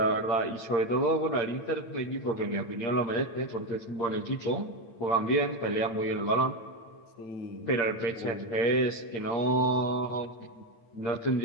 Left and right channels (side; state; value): right; late; 8.6 ms